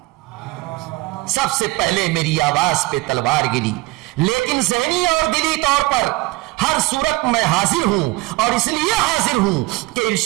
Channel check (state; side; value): quieter; left; 21.7 dB